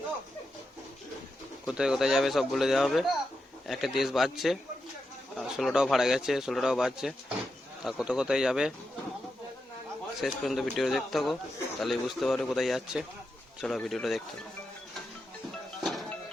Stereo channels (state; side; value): normal; both; correlation 0.87